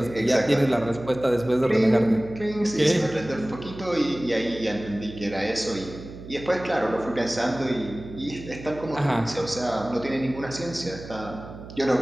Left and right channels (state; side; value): noise; right; hum, 14 dB below the sound